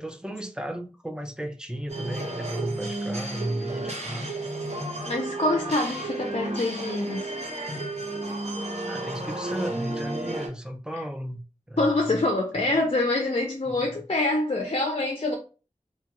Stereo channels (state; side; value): normal; both; correlation 0.56